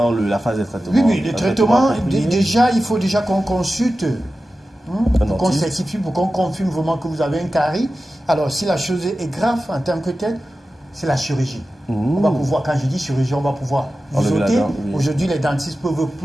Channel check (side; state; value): both; normal; correlation 0.94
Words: la phase de traitement. Oui, le traitement, déjà, il faut déjà qu'on consulte, pour qu'on certifie, pour qu'on confirme vraiment que vous avez un carie. Alors, si la chose est grave en tant que telle, c'est la chirurgie. On va pouvoir, quand je dis chirurgie, on va pouvoir vous ôter. Aujourd'hui, les dentistes peuvent